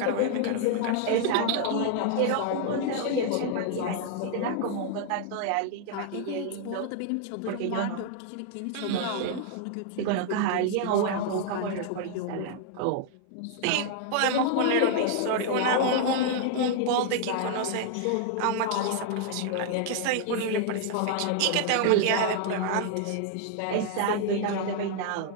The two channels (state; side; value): different; both; correlation 0.00